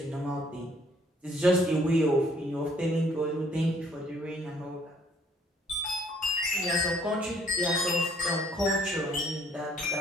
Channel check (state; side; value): normal; both; correlation 0.63